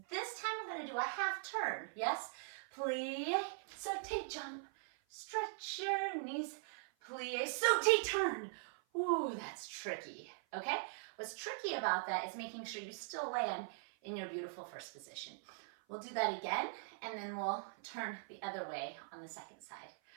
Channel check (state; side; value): silent; left; 50 dB below the other